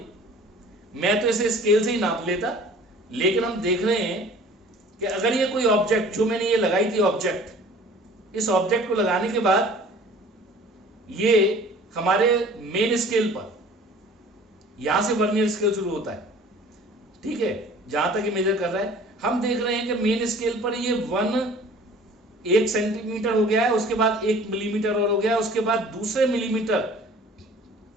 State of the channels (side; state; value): both; normal; correlation 0.48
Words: मैं तो इसे स्केल से ही नाप लेता, लेकिन हम देख रहे हैं कि अगर ये कोई ऑब्जेक्ट, जो मैंने ये लगाई थी ऑब्जेक्ट, इस ऑब्जेक्ट को लगाने के बाद ये हमारे मेन स्केल पर, यहां से वर्नियर स्केल शुरू होता है, ठीक है, जहां तक ये मेजर कर रहा है, हम देख रहे हैं कि मेन स्केल पर ये 1 सेंटीमीटर हो गया है, उसके बाद 1 मिलीमीटर और हो गया है, उसके बाद दूसरे मिलीमीटर